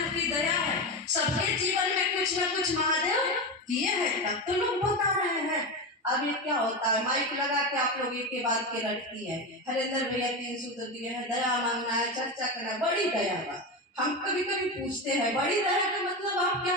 की दया है, सबके जीवन में कुछ न कुछ महादेव किए हैं, तब तो लोग बता रहे हैं। अब ये क्या होता है, माइक लगा के आप लोग एक के बाद के लटकी है, हरेंद्र भैया 3 सूत्र दिए हैं, दया मांगना है, चर्चा करना है, बड़ी दया का। हम कभी कभी पूछते हैं बड़ी दया का मतलब आप क्या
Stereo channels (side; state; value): both; normal; correlation 0.18